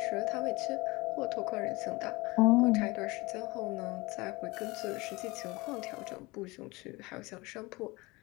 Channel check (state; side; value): quieter; right; 23.1 dB